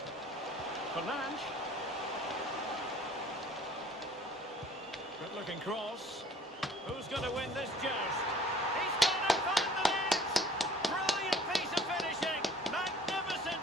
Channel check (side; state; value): both; normal; correlation 0.52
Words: Fernandes. Good looking cross. Who's going to win this joust? He's going to find the net! Brilliant piece of finishing! Magnificent